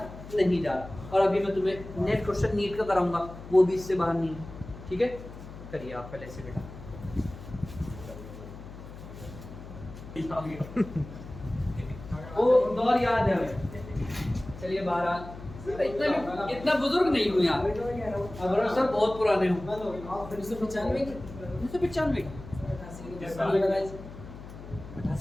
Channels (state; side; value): noise; left; hum, 14 dB below the sound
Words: नहीं जा रहा। और अभी मैं तुम्हें नेक्स्ट क्वेश्चन नीट का कराऊंगा, वो भी इससे बाहर नहीं है। ठीक है, करिए आप पहले से बेटा। वो दौर याद है हमें। चलिए बाहर। इतना बुजुर्ग नहीं हूँ यार, अगर सब बहुत पुराने हूँ। 1995